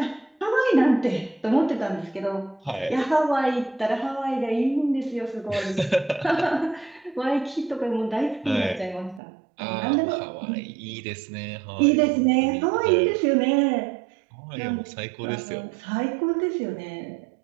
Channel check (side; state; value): left; drops out; at 9.2 s